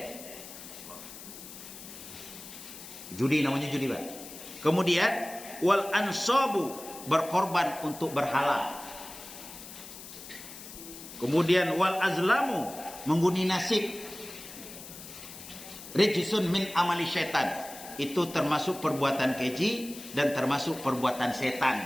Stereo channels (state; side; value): noise; left; hiss, 14 dB below the sound